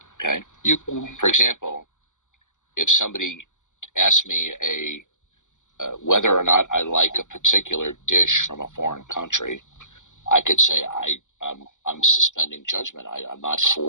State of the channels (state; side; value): late; right; 0.86 ms